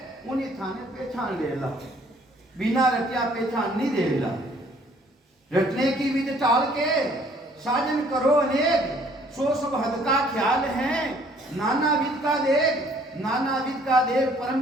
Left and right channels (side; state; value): both; normal; correlation 0.59